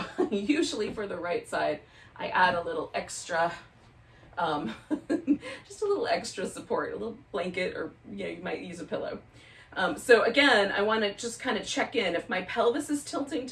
usually for the right side, I add a little extra, just a little extra support, a little blanket, or you might use a pillow. So again, I want to just kind of check in. If my pelvis is tilting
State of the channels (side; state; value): both; identical; correlation 1.00